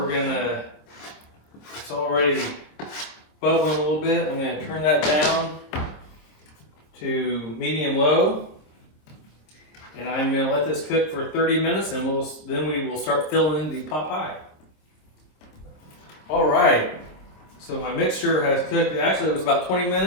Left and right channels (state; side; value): late; right; 26 ms